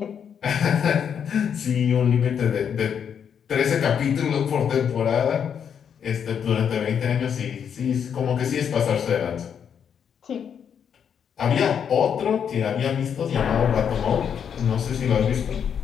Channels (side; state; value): right; quieter; 7.8 dB